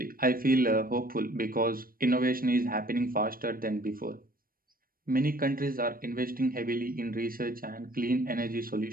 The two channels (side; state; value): left; late; 0.42 ms